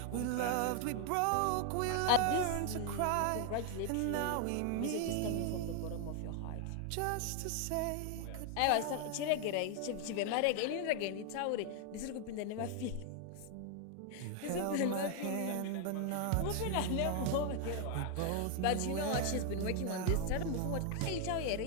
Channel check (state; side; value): different; both; correlation 0.00